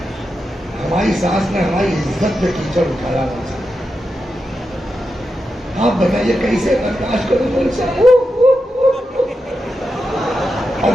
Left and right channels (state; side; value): normal; both; correlation 0.88